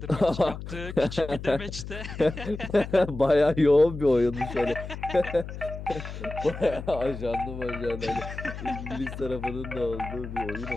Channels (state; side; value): noise; left; hum, 9 dB below the sound